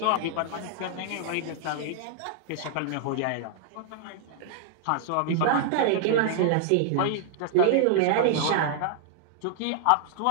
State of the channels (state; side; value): different; both; correlation -0.01